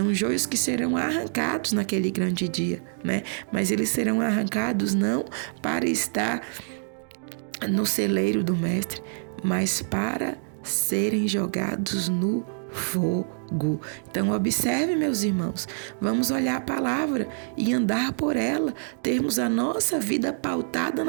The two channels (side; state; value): left; silent; digital silence